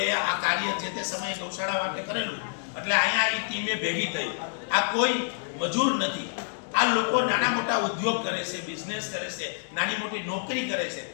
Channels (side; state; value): right; silent; digital silence